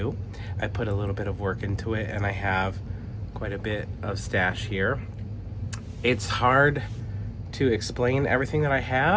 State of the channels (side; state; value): both; identical; correlation 1.00